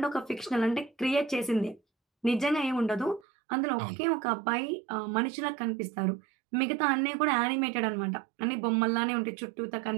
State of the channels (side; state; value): left; drops out; at 3.2 s